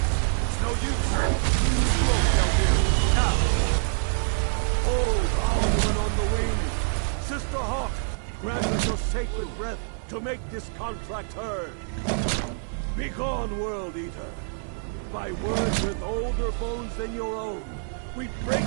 It's no use. Slow, Feldir. Now. Hold Alduin on the wing! Sister Hawk, grant us your sacred breath to make this contract heard. Begone, World Eater! By words with older bones than your own, we break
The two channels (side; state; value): left; silent; digital silence